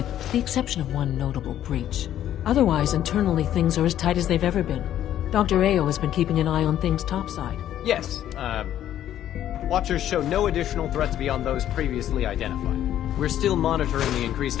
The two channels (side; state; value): right; quieter; 11.5 dB